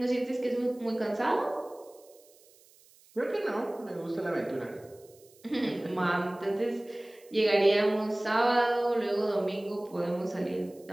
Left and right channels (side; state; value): right; noise; hiss, 28 dB below the sound